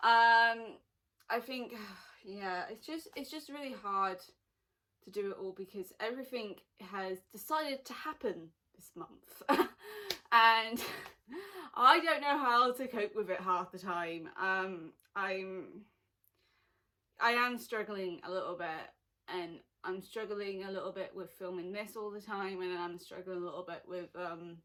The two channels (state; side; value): identical; both; correlation 1.00